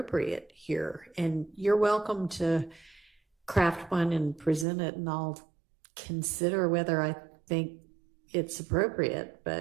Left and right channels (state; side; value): drops out; left; at 4.7 s